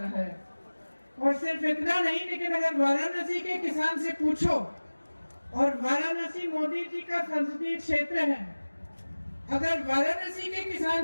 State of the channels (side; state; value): both; inverted; correlation -1.00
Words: है। और सिर्फ इतना नहीं, लेकिन अगर वाराणसी के किसान से पूछो, और वाराणसी मोदी जी का संसदीय क्षेत्र है, अगर वाराणसी के